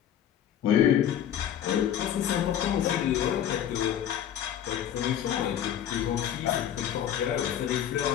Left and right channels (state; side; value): quieter; right; 10.2 dB